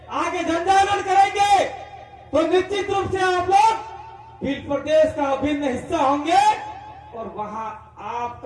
आगे जनजागरण करेंगे तो निश्चित रूप से आप लोग भील प्रदेश का अभिन्न हिस्सा होंगे और वहां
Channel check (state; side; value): identical; both; correlation 1.00